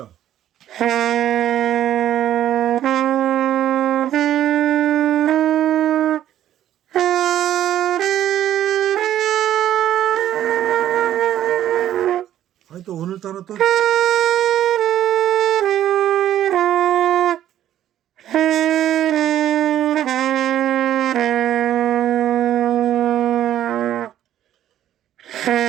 아니 또 오늘따라 또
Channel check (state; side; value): quieter; left; 11.7 dB